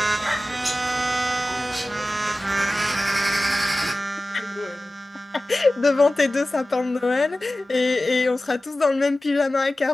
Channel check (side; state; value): both; normal; correlation 0.96